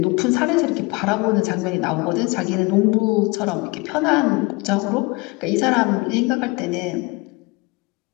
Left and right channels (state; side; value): quieter; right; 25.6 dB